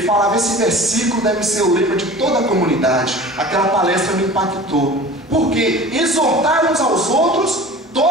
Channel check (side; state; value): both; normal; correlation 0.40